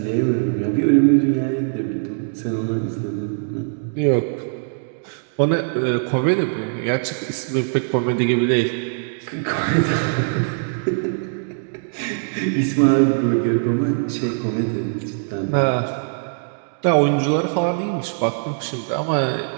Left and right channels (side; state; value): left; silent; digital silence